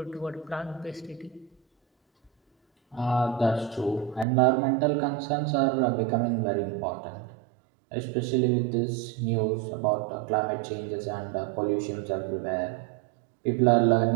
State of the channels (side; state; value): left; drops out; at 4.2 s